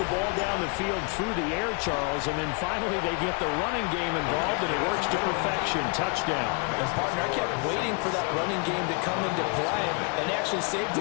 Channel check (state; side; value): quieter; right; 34.4 dB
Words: ball down the field through the air, Charles, and then finally they get the running game involved, and it works to perfection. Touchdown. And, partner, I kept waiting for that running game to come into play and actually saved